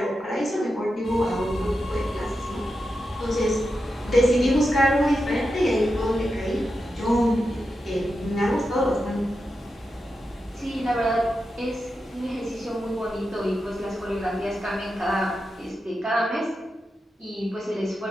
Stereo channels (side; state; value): both; normal; correlation 0.89